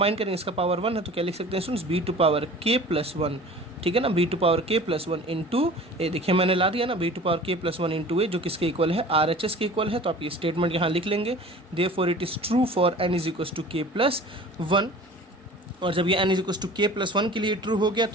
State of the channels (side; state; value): both; normal; correlation 0.42